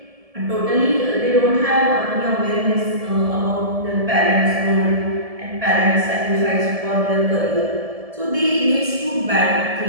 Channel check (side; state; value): left; late; 1.7 ms